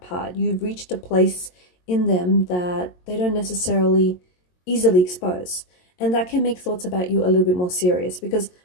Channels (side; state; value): right; late; 22 ms